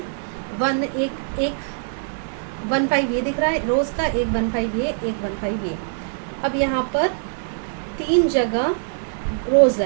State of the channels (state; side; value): silent; left; digital silence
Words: 1/5 ये दिख रहा है रोज का, एक 1/5 ये, एक 1/5 ये। अब यहाँ पर 3 जगह रोज